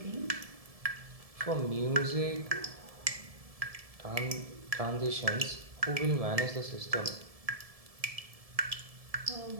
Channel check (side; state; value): left; late; 1.7 ms